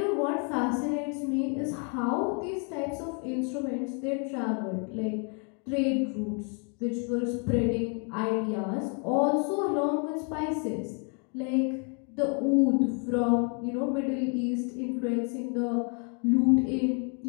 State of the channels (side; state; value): right; quieter; 38.8 dB